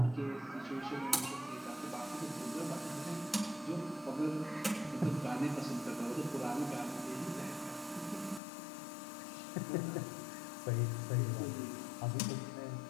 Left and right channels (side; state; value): right; drops out; at 8.4 s